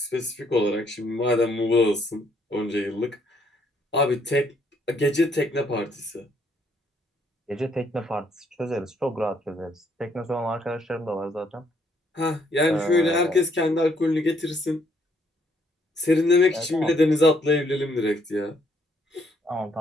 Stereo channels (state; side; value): normal; both; correlation 0.70